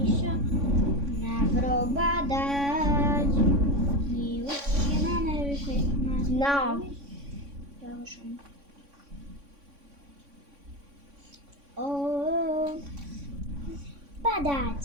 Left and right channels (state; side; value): late; left; 3.6 ms